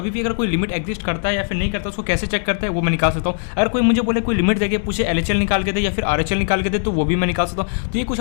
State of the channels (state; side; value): silent; right; 63 dB below the other